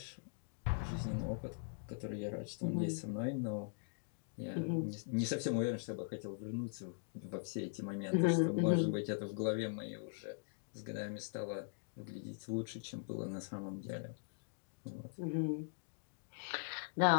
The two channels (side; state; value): right; silent; digital silence